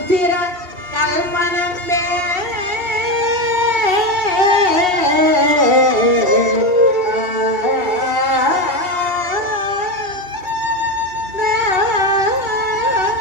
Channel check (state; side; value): late; left; 2.7 ms